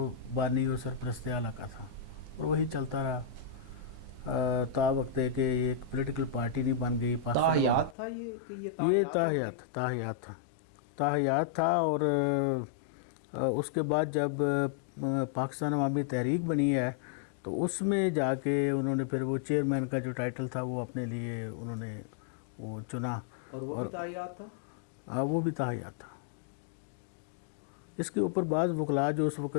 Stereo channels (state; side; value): drops out; right; at 8.0 s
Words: بانی و سرپرست اعلیٰ کا تھا، اور وہی چلتا رہا تا وقت ہے کہ ایک پولیٹیکل پارٹی نہیں بن گئی۔ تاحیات تھا یہ کہ یہ تاحیات ہوں گے؟ تاحیات تھا، تاحیات تھا، اور اس کے بعد جب پاکستان عوامی تحریک بنی ہے تو اس میں جا کے انہوں نے پھر وہ چیئرمین کا جو ٹائٹل تھا وہ اپنے لیے انہوں نے وہ چنا، اور وہ بھی تاحیات تھا؟ وہ بھی تاحیات تھا۔ اس کے اوپر بعض وکلاء جو اس